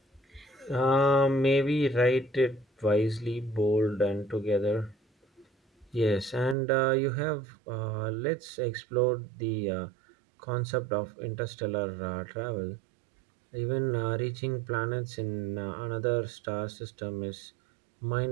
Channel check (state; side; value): drops out; left; at 6.6 s